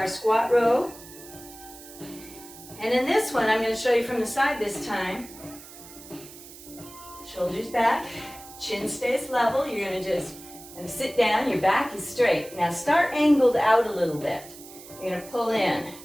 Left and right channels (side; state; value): right; noise; hiss, 17 dB below the sound